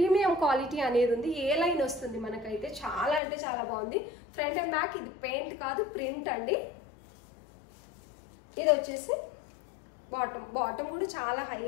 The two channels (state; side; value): drops out; right; at 3.2 s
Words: క్వాలిటీ అనేది ఉంది. ఏ లైన్ వస్తుంది మనకైతే. చాలా అంటే చాలా బాగుంది. Front and back. ఇది పెయింట్ కాదు, ప్రింట్ అండి. ఇది వచ్చేసి బాటమ్ కూడా చాలా